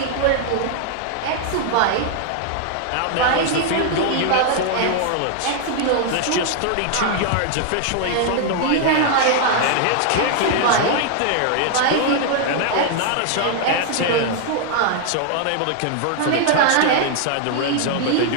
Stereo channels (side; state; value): both; different; correlation 0.00